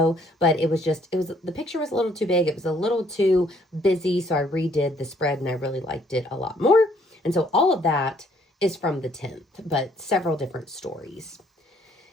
but the picture was a little too big. It was a little too busy. So I redid the spread and I really liked it a lot more. And so all of that is from the 10th, but several different stories.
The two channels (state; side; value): normal; both; correlation 0.64